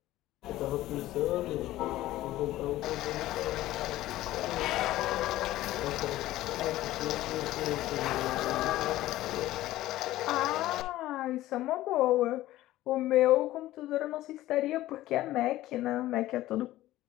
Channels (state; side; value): quieter; right; 15.6 dB